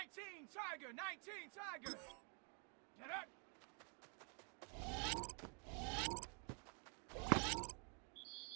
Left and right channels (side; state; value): left; quieter; 37.9 dB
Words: Tiger, 19 Tiger. Get up.